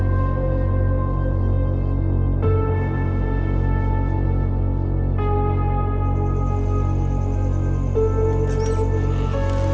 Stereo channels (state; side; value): identical; both; correlation 1.00